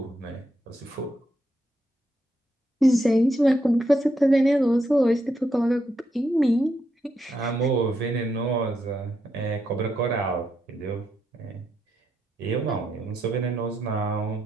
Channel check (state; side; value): normal; both; correlation 0.81